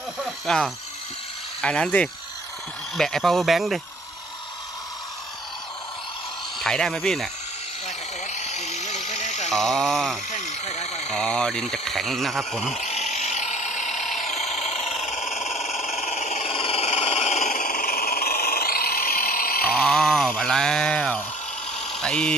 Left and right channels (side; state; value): both; normal; correlation 0.53